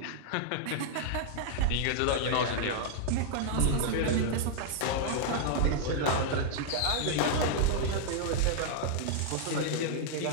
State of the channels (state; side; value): different; both; correlation -0.01